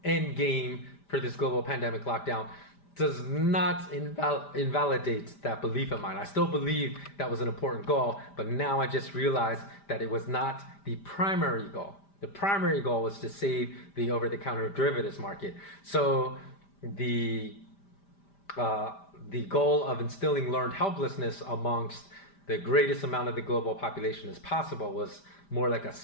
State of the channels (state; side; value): late; right; 5.1 ms